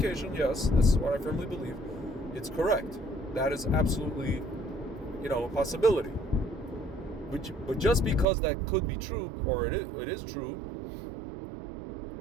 Yes, this is what I firmly believe. It's correct. That is absolutely, a possibility. But just because that could be true, or it is true,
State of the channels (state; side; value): drops out; left; at 8.2 s